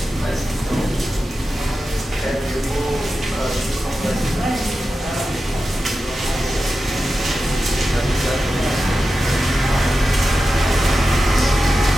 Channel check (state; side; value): normal; both; correlation 0.92